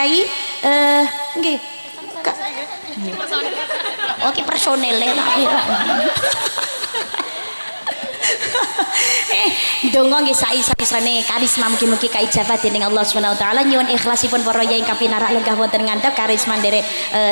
nggih oke personel donga nggih saisa-isane karisma mugi-mugi kaijabah dening Allah Subhanahu wa taala. Nyuwun ikhlasipun para yai ingkang pinarak lenggah wonten ngandhap karisma nderek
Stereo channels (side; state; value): both; inverted; correlation -1.00